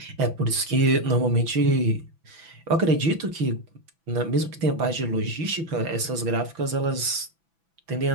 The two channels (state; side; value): late; left; 6.0 ms